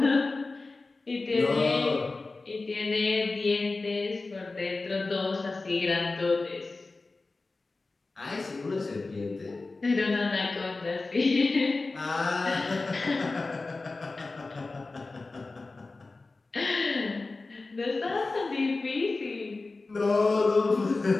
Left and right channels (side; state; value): right; quieter; 3.5 dB